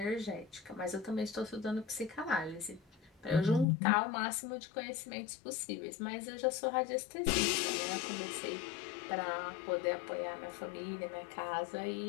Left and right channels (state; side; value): drops out; right; at 3.7 s